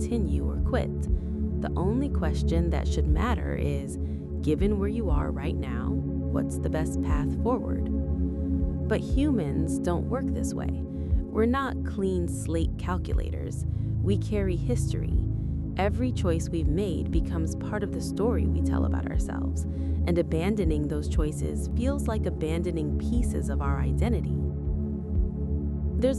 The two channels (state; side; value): identical; both; correlation 1.00